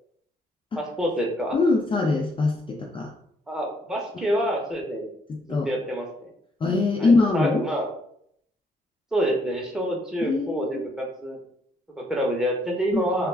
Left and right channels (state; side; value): normal; both; correlation 0.71